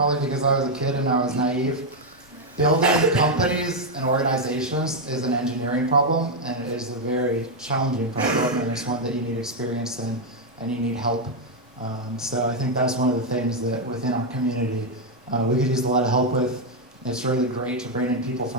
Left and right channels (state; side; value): normal; both; correlation 0.01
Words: because I was a kid and I was naive. Building companies and organizations is an engineering problem, and it is a very challenging problem, and it's one that you need experience in and you need help. So I think that's one of the things that within our community we could use a lot of help with. It's really great to bring in people